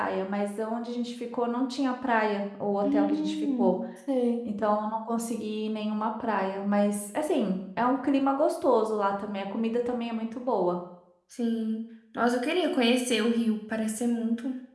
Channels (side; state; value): both; identical; correlation 1.00